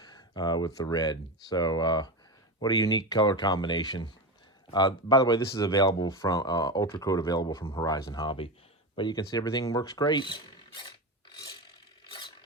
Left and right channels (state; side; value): normal; both; correlation 0.21